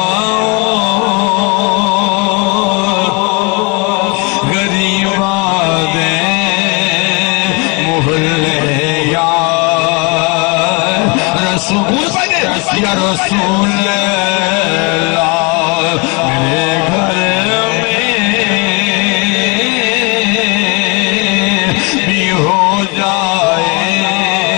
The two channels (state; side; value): quieter; right; 30.7 dB